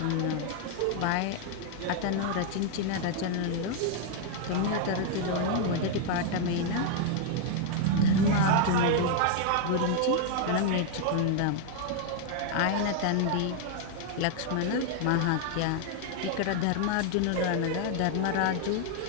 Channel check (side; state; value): both; different; correlation 0.00